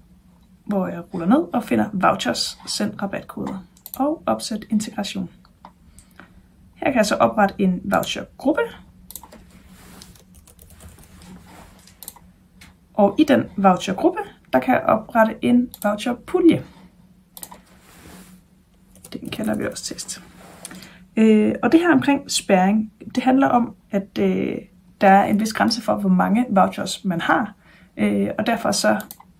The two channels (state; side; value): identical; both; correlation 1.00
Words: hvor jeg ruller ned og finder vouchers, send rabatkoder og opsæt integration. Her kan jeg så oprette en vouchergruppe. Og i den vouchergruppe, der kan jeg oprette en voucherpulje. Den kalder vi også test. Og det her omkring spærring, det handler om, at der er en vis grænse for, hvor mange vouchers man har. Og derfor så,